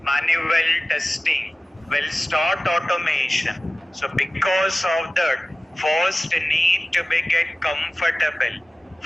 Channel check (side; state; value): both; normal; correlation 0.96